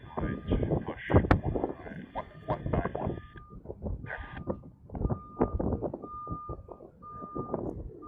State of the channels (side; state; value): both; identical; correlation 1.00